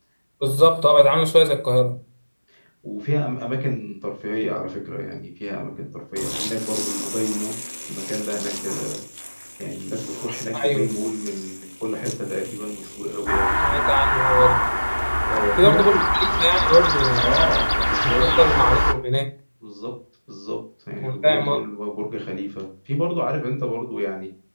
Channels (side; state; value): both; inverted; correlation -1.00